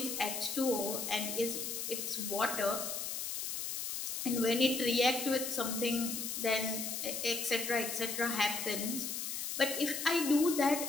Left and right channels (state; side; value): noise; left; hiss, 3 dB below the sound